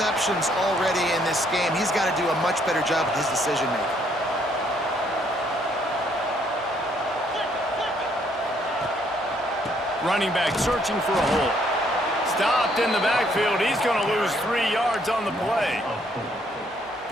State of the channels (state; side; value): normal; both; correlation 0.68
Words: already in this game. He's got to do a much better job with his decision-making. Running back searching for a hole. Stopped in the backfield. He's going to lose 3 yards on the play.